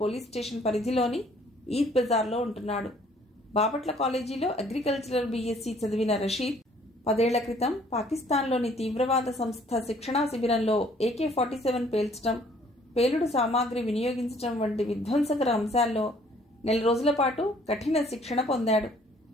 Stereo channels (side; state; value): both; normal; correlation 0.59